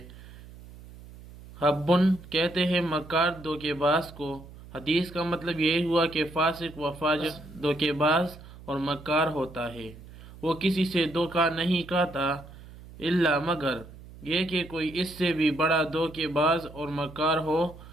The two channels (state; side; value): noise; right; hum, 18 dB below the sound